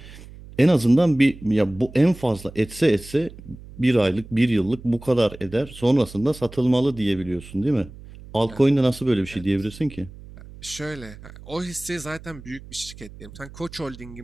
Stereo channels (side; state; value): right; noise; hum, 17 dB below the sound